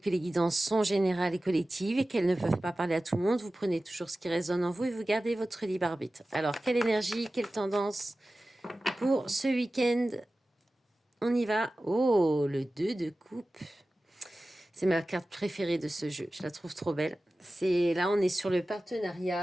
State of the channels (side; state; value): both; normal; correlation 0.95